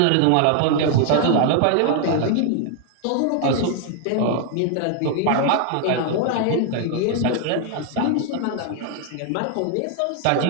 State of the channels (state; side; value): different; both; correlation 0.00